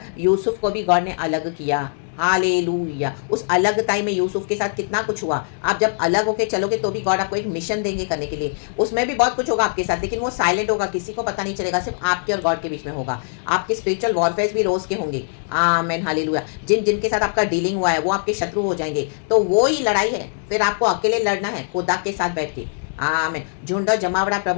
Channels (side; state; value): right; silent; digital silence